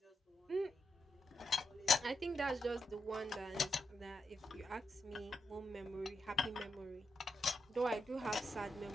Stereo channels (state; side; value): normal; both; correlation 0.84